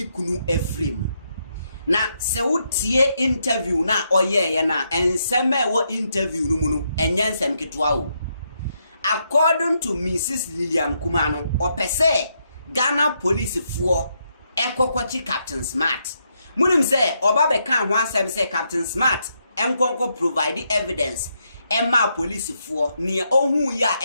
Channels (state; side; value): inverted; both; correlation -0.79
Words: kunu Ephraim. Na se wotie interview na ye na enseme wo interview no mu no enye nsem ketwa o. According to Mrs. Lillian Kuma no, opese Ghana police for ekokwachi Captain Smart. Munim say oba be kan ho asem say Captain Smart enkonko provide evidence emma police for near ohun ya